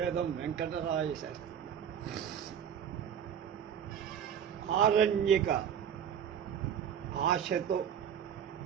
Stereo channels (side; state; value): left; quieter; 8.7 dB